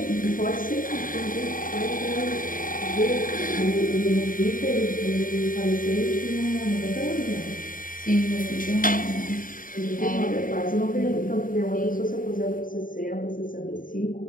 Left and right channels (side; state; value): right; late; 0.40 ms